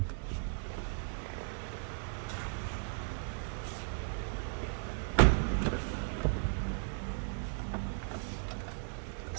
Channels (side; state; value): left; silent; 54 dB below the other